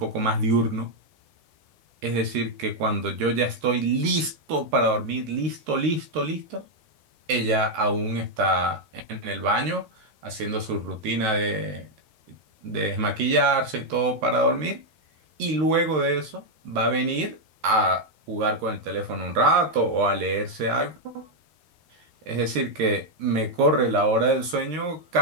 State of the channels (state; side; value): late; left; 13 ms